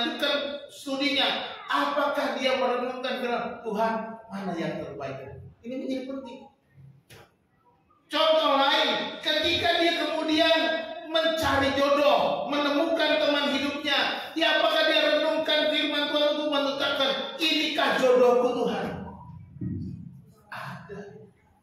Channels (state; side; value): identical; both; correlation 1.00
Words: studinya, apakah dia merenungkan firman Tuhan mana yang terbaik? Ini menjadi penting. Contoh lain, ketika dia kemudian mencari jodoh, menemukan teman hidupnya, ya apakah dia renungkan firman Tuhan untuk menetapkan inikah jodohku Tuhan? Ada.